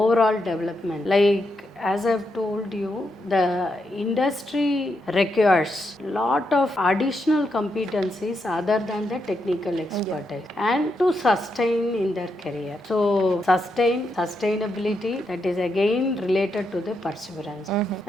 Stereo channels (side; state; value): both; normal; correlation 0.82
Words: development. Like as I've told you, the industry requires lot of additional competencies other than the technical expertise and to sustain in their career. So sustainability, that is again related to the perseverance.